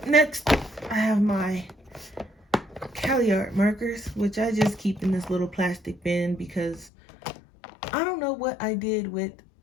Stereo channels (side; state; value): right; drops out; at 6.9 s